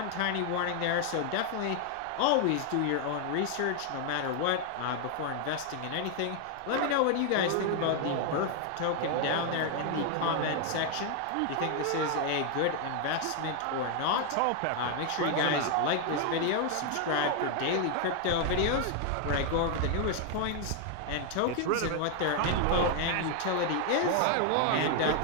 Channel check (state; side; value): different; both; correlation 0.00